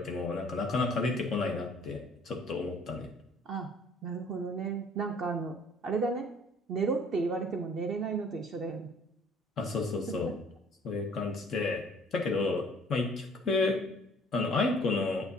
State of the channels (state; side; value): normal; both; correlation 0.55